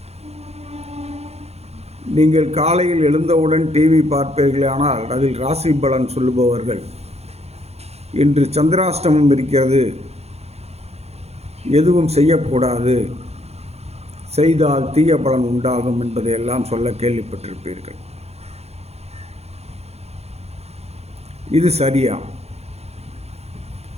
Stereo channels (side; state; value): left; late; 0.31 ms